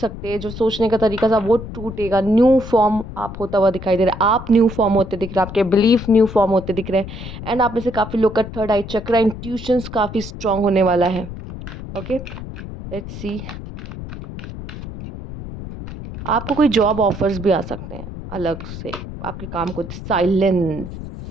हैं, जो सोचने का तरीका था वो टूटेगा। न्यू फॉर्म आप होता हुआ दिखाई दे रहा है। आप न्यू फॉर्म होते दिख रहे हैं, आपके बिलीफ न्यू फॉर्म होते दिख रहे हैं। एंड आप में से काफ़ी लोग का थर्ड आई चक्र, इंट्यूशंस काफ़ी स्ट्रांग होने वाला है। Okay, let's see. आपको कोई जॉब ऑफर्स भी आ सकते हैं अलग से आपके काम को। साइलेंस,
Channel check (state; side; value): noise; left; rumble, 10 dB below the sound